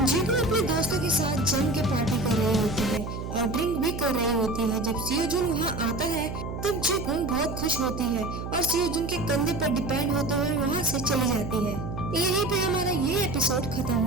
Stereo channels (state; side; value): noise; right; hum, 6 dB below the sound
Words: यूक्यूंग अपने दोस्तों के साथ जम के पार्टी कर रही होती है और ड्रिंक भी कर रही होती है। जब सियोजुन वहाँ आता है तब यूक्यूंग बहुत खुश होती है और सियोजुन के कंधे पर डिपेंड होते हुए वहाँ से चली जाती है। यहीं पे हमारा ये एपिसोड खत्म